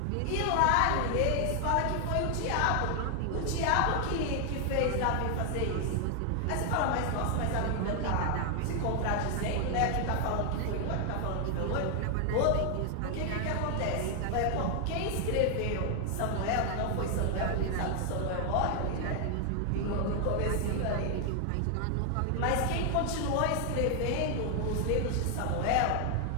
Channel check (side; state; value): both; different; correlation 0.00